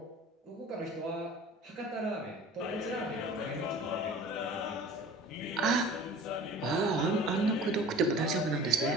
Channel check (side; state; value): both; normal; correlation 0.43